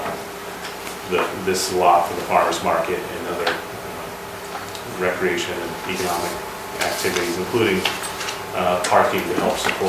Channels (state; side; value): identical; both; correlation 1.00